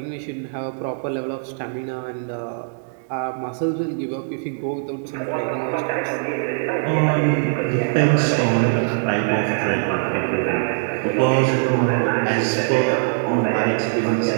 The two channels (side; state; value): left; silent; digital silence